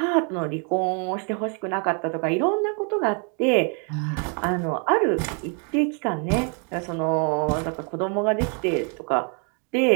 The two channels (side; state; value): left; quieter; 39.1 dB